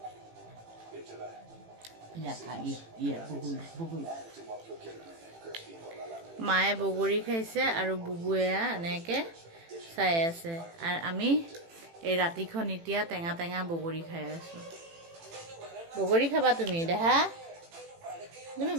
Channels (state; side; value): late; left; 18 ms